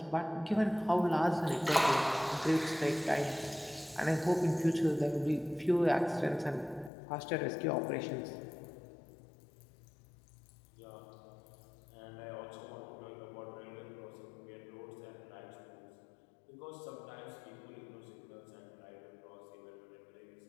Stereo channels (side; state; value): right; drops out; at 6.9 s